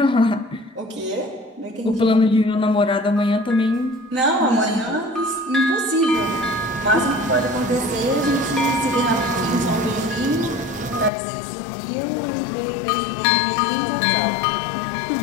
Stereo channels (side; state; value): right; drops out; at 11.1 s